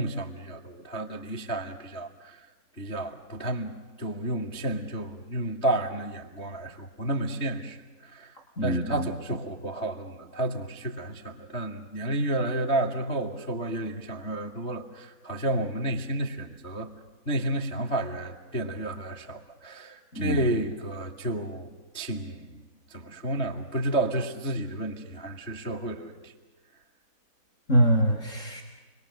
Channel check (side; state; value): right; late; 3.3 ms